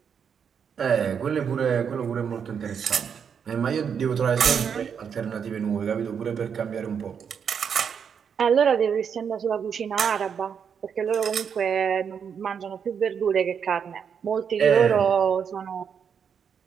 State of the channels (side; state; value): left; quieter; 7.2 dB